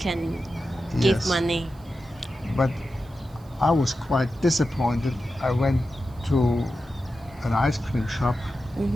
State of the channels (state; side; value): noise; right; hiss, 30 dB below the sound